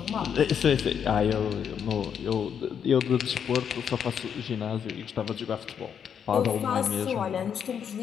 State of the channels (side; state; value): right; quieter; 7.9 dB